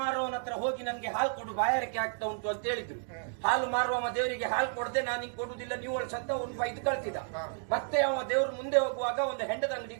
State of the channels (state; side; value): silent; left; digital silence